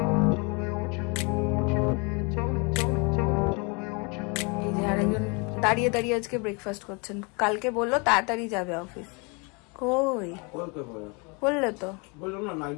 এই যে আরেকজন দাঁড়িয়ে দাঁড়িয়ে আজকে ব্রেকফাস্ট করছেন কালকে বললো তাড়াতাড়ি যাবে অফিস কই বললে তো বললাম না নাইট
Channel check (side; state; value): right; quieter; 31.5 dB